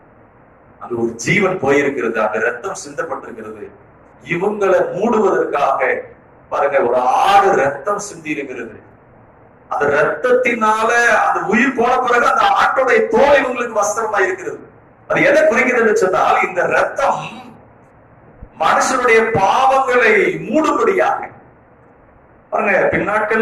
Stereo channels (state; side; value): identical; both; correlation 1.00